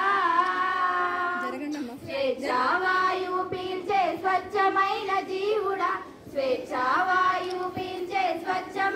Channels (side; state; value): both; identical; correlation 1.00